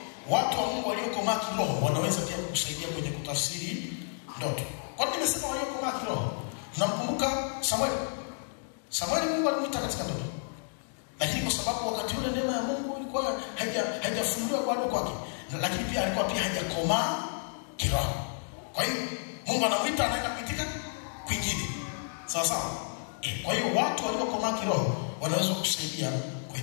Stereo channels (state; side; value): silent; right; digital silence